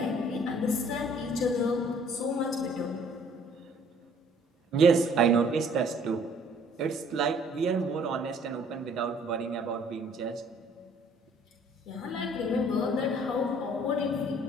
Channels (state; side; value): normal; both; correlation 0.58